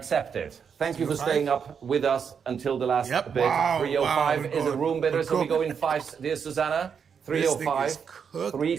it. Thank you for 305? staying up with us until the last Yep. bit. Wow, 305 wow, is a room bidder, so we go in five. Dear Susanna, This thing 305, is cooked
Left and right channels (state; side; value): quieter; left; 6.8 dB